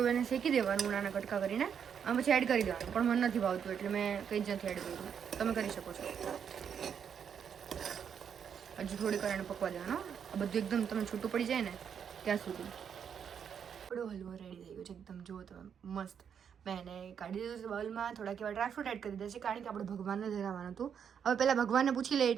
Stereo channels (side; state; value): left; quieter; 7.7 dB